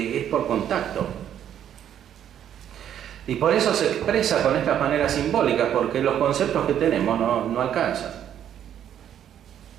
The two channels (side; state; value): left; quieter; 10.0 dB